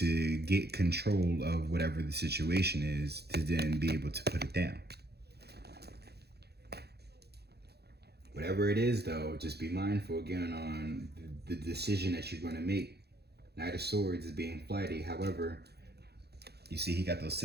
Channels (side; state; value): left; late; 0.47 ms